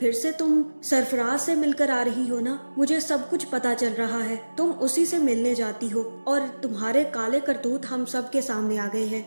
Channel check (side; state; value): both; inverted; correlation -1.00